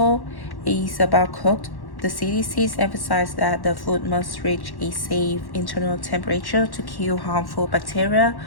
is about cooked. The CDCs emphasize that the food must reach a safe internal temperature to kill harmful bacteria.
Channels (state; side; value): late; right; 1.1 ms